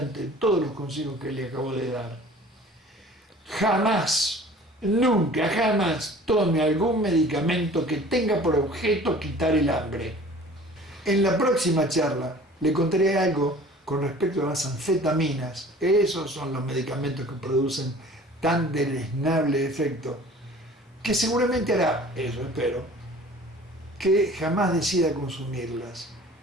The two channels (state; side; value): normal; both; correlation 0.46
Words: de todos los consejos que le acabo de dar. Jamás, nunca, jamás tome algún medicamento que tenga por objeto quitar el hambre. En la próxima charla le contaré algo con respecto a las anfetaminas. Esos son los medicamentos que producen tan deleznable efecto, que seguramente hará, eso espero, que jamás decida consumirlas,